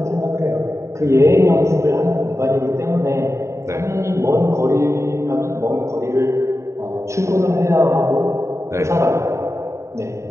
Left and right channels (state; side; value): late; left; 0.14 ms